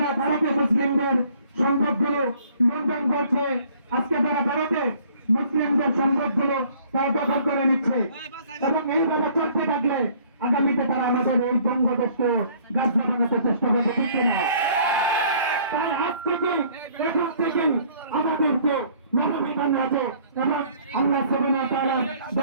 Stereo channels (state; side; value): inverted; both; correlation -0.58